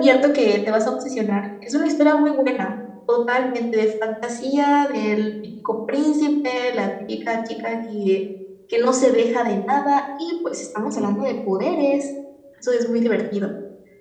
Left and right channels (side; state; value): both; identical; correlation 1.00